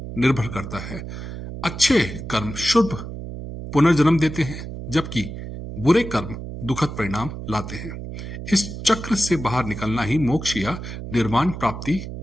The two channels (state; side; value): noise; right; hum, 9 dB below the sound